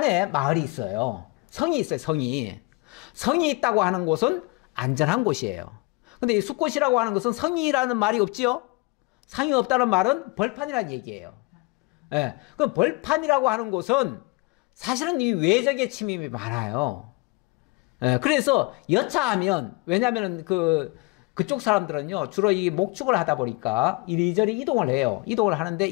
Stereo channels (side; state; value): right; quieter; 25.6 dB